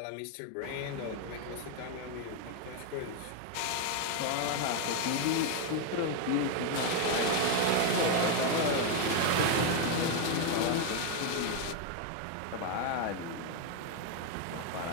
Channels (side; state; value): both; different; correlation 0.01